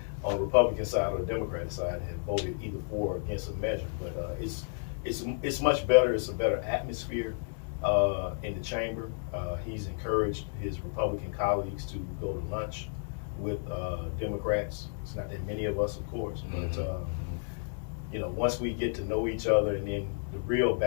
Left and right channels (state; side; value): silent; right; digital silence